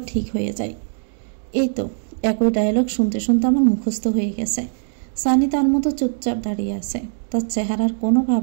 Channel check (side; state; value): left; silent; digital silence